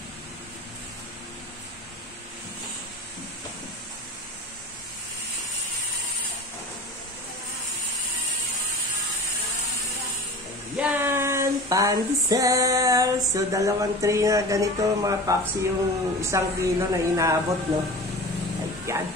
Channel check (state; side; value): normal; both; correlation 0.36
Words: Yan! Pandesal! So, 2 tray na ganito mga papsi yung 1 kilo na inaabot, no? Ayan!